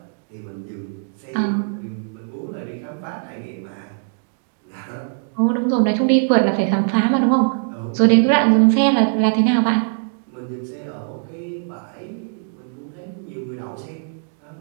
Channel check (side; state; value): left; silent; digital silence